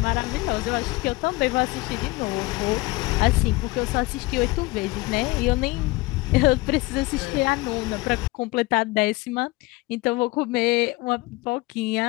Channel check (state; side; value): quieter; right; 21.8 dB